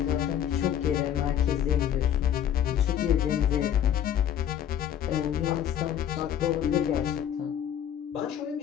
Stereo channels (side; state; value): right; quieter; 9.9 dB